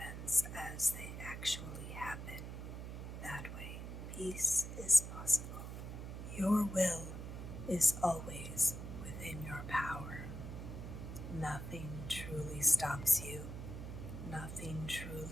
as they actually happen. That way, peace is possible. Your will is always within your power. Nothing truly stops you. Nothing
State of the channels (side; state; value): right; noise; hum, 7 dB below the sound